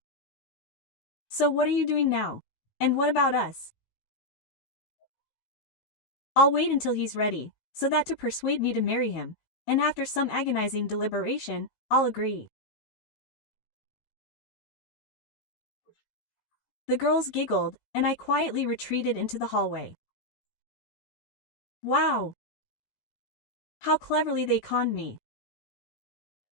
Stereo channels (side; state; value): right; late; 16 ms